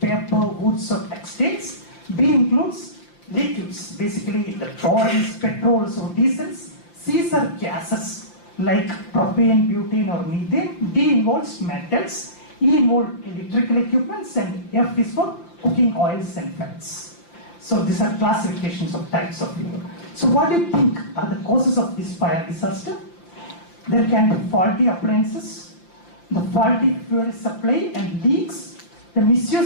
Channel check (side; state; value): right; late; 5.8 ms